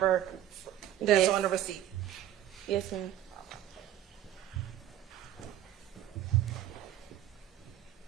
that's Yes. on the receipt? Yes, ma'am.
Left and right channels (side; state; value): left; quieter; 11.9 dB